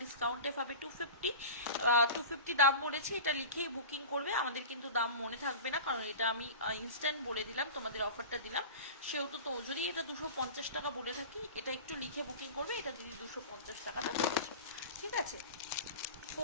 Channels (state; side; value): inverted; both; correlation -0.33